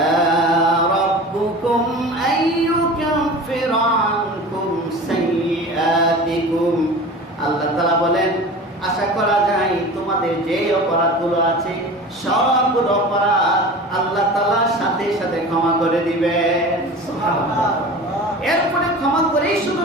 রাব্বুকুম আন ইউকাফিরা আনকুম সাইয়্যাতিকুম। আল্লাহ তাআলা বলেন, আশা করা যায় তোমাদের যে অপরাধগুলো আছে, সবগুলো অপরাধ আল্লাহ তাআলা সাথে সাথে ক্ষমা করে দিবেন। সুবহানাল্লাহ। এরপরে ক্ষমা করেই শুধু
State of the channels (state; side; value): normal; both; correlation 0.36